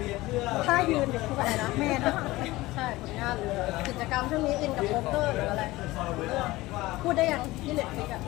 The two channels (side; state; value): right; quieter; 19.0 dB